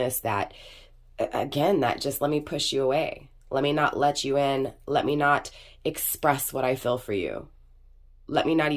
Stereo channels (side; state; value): both; identical; correlation 1.00